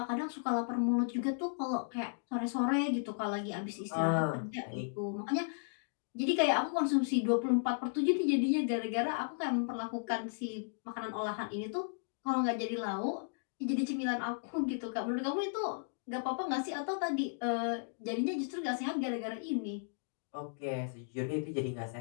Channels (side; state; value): right; silent; digital silence